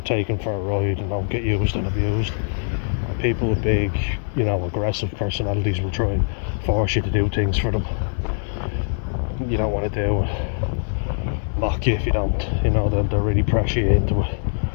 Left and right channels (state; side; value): silent; right; digital silence